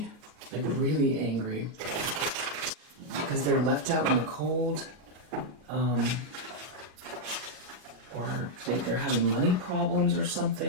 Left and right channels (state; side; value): late; left; 39 ms